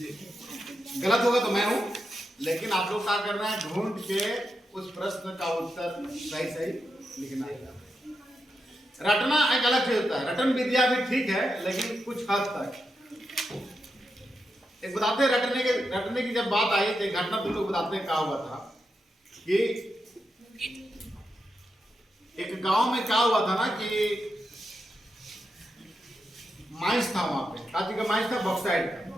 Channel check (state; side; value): normal; both; correlation 0.86